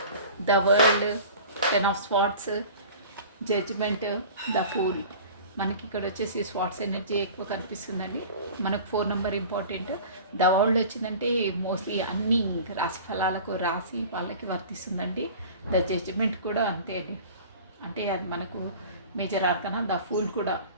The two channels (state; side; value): inverted; both; correlation -0.41